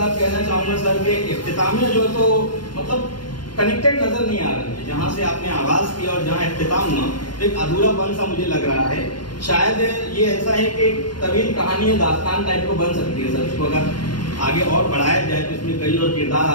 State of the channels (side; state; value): right; late; 0.71 ms